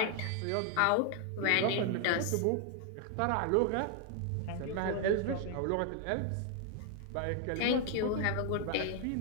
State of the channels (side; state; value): both; different; correlation 0.00